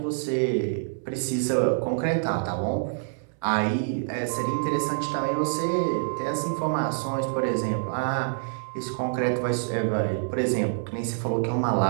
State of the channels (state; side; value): silent; left; 60 dB below the other